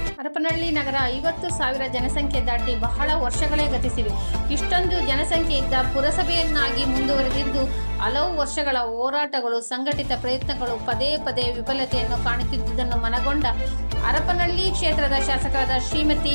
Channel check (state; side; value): inverted; both; correlation -1.00